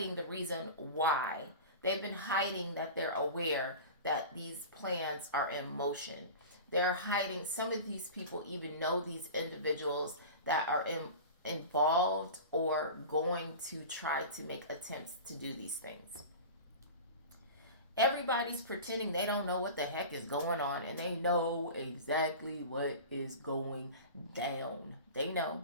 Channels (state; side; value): inverted; both; correlation -0.33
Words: the reason why. They've been hiding that they're aware that these plans are in motion. They're hiding, some of these people even know these individuals that are involved or going to try to make attempts to do these things. Everybody's pretending they don't know what the heck is going on, and they know exactly what is going down. They know.